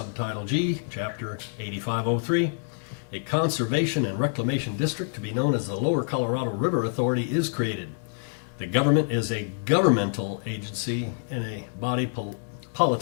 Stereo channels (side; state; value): right; silent; digital silence